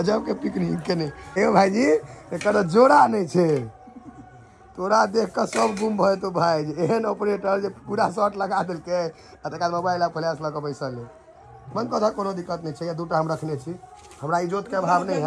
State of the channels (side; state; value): both; identical; correlation 1.00